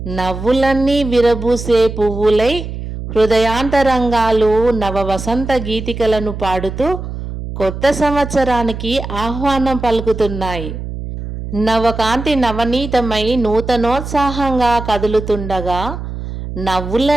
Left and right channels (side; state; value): right; noise; hum, 8 dB below the sound